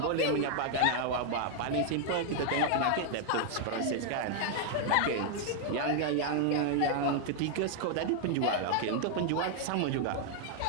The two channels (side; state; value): both; different; correlation 0.00